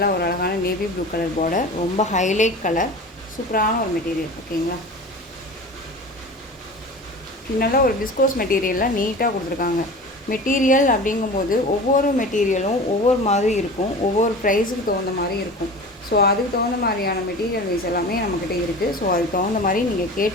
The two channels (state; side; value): normal; both; correlation 0.36